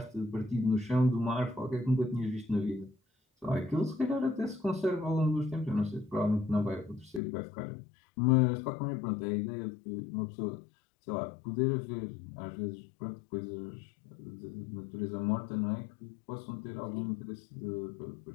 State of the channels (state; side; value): drops out; right; at 7.2 s